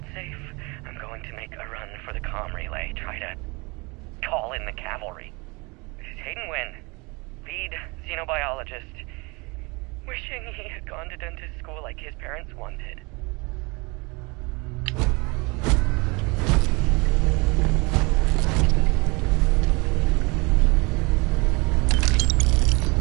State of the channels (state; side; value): quieter; left; 27.7 dB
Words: safe, I'm going to make a run for the comm relay. Try to call in the cavalry. This is Hayden Wynn, lead xenobiologist. Wishing he had gone to dentist school like his parents wanted.